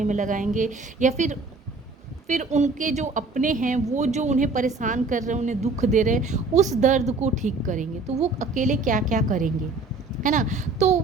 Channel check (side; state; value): left; quieter; 3.6 dB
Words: में लगाएंगे, या फिर उनके जो अपने हैं, वो जो उन्हें परेशान कर रहे हैं, उन्हें दुख दे रहे हैं, उस दर्द को ठीक करेंगे। तो वो अकेले क्या क्या करेंगे, है ना। तो